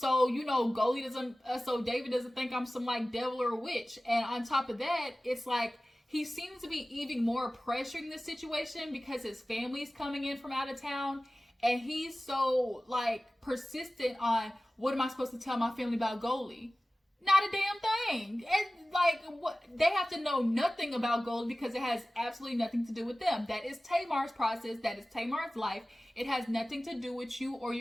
Goli doesn't, so David doesn't think I'm some like devil or witch. And on top of that, it's like, he seems to be even more pressuring the situation because his family's coming in from out of town. And he's so like persistent on, what am I supposed to tell my family about Goli? Not a damn thing. And like, what, they have to know nothing about Goli because it has absolutely nothing to do with them. That is Tamar's process. That is Tamar's life. It has nothing to do with you or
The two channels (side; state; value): both; normal; correlation 0.97